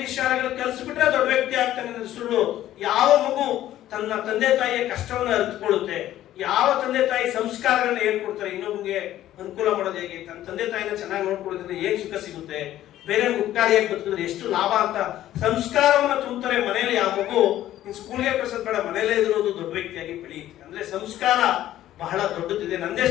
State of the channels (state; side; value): quieter; right; 13.2 dB